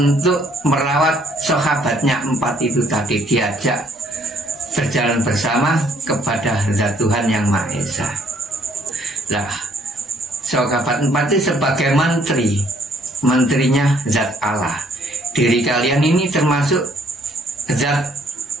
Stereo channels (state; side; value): normal; both; correlation 0.64